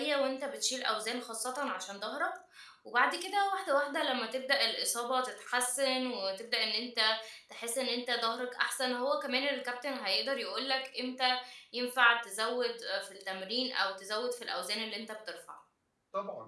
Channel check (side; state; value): both; identical; correlation 1.00